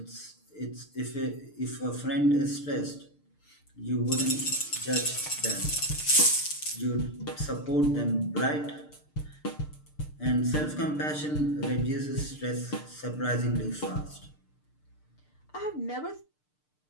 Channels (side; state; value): right; late; 6.7 ms